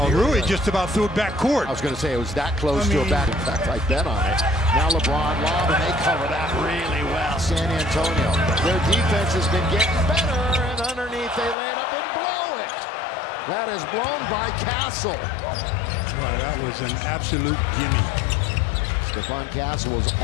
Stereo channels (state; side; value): drops out; right; at 11.6 s